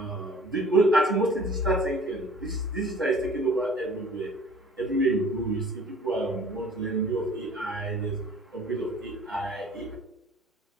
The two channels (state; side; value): normal; both; correlation 0.50